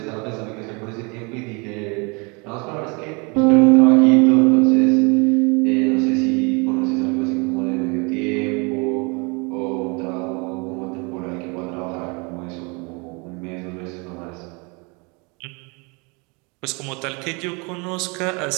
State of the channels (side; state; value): left; quieter; 30.7 dB